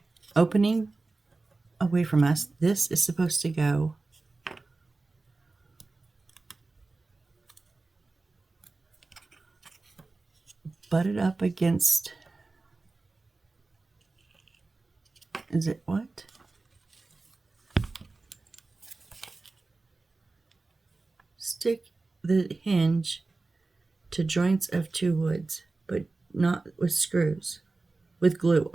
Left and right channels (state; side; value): quieter; left; 3.5 dB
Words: opening away from us, this is supposed to go butt it up against, is it what? Stick the hinge to joints of 2 woods, but not with screws, with glue.